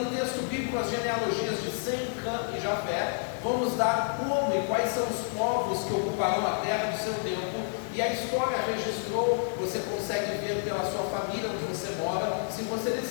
texto bíblico as genealogias de Sem, Cã e Jafé vão nos dar como e quais são os povos que ocuparão a terra do seu tempo, e a história registrou. Você consegue ver pela sua família onde você mora, se você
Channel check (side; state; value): right; silent; digital silence